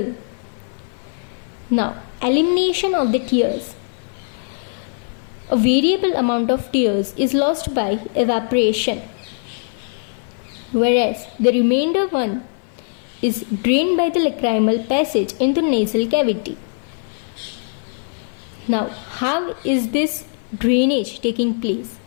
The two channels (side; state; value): right; silent; 55 dB below the other